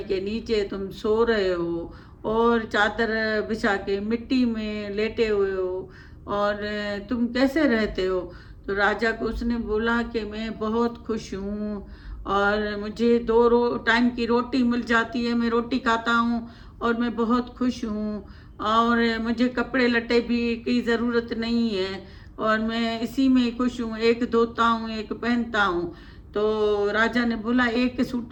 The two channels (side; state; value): both; identical; correlation 1.00